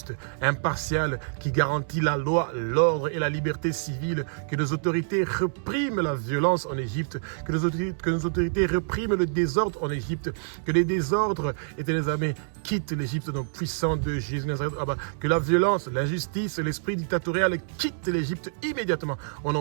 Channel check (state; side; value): silent; left; digital silence